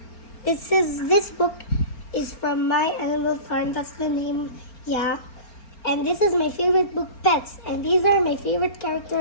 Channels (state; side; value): late; right; 4.3 ms